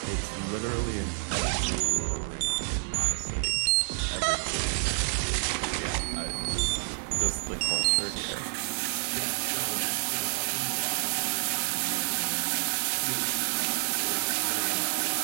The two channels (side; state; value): left; silent; digital silence